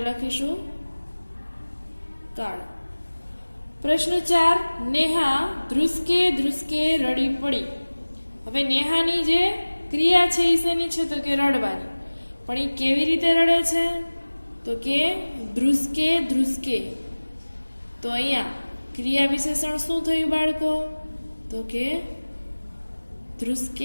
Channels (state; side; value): inverted; both; correlation -1.00